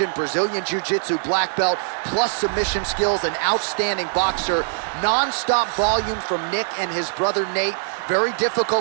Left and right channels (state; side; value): silent; left; 57 dB below the other